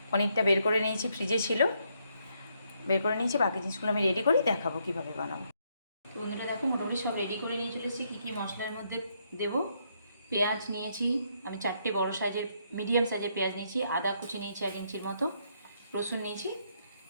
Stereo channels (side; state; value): both; inverted; correlation -0.74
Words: পনিরটা বের করে নিয়েছি, ফ্রিজে ছিল, বের করে নিয়েছি। বাকি জিনিসগুলো আমি রেডি করি, দেখাবো কীভাবে বানাবো। তো বন্ধুরা দেখো, মোটামুটি সব রেডি করে নিয়ে চলেছি। কী কী মশলার মধ্যে দেব। পেঁয়াজ নিয়েছি আমি 4টে বড় সাইজের, মিডিয়াম সাইজের পেঁয়াজ নিয়েছি। আদা কুচি নিয়েছি 1 ইঞ্চির মতো, রসুন নিয়েছি।